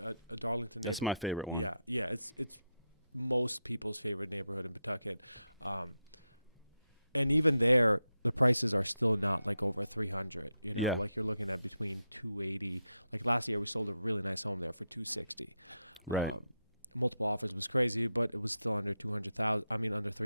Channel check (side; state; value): both; inverted; correlation -0.85